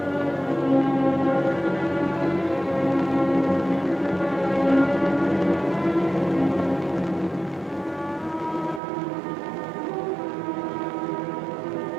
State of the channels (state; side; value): drops out; left; at 8.8 s